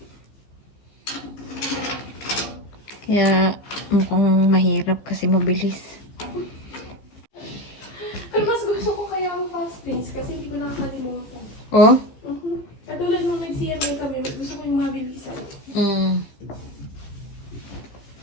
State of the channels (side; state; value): right; late; 15 ms